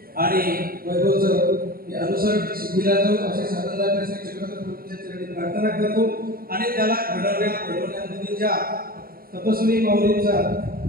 आणि वैभवचं अनुसरण सिद्धीला जाऊ असे साधनदार चक्रधर प्रभूंच्या चरणी प्रार्थना करतो आणि त्याला घडवण्यामध्ये ज्या तपस्वी माऊलींचा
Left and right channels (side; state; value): left; late; 0.43 ms